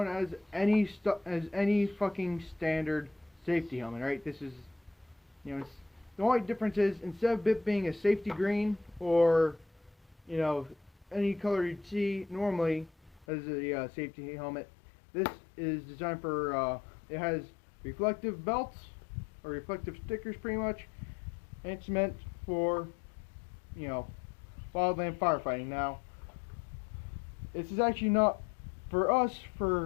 as any fucking standard safety helmet, right? This is, the only difference is, instead of it being a safety green, or, any color you'd see normally as a safety helmet, this is designed for, it has reflective belts, or reflective stickers pretty much, and it's meant for, wildland firefighting. Now, this is actually not for us,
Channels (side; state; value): right; drops out; at 13.2 s